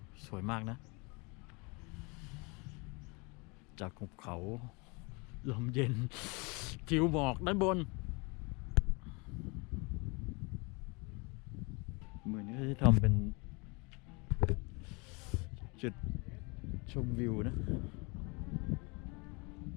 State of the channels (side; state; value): right; quieter; 29.0 dB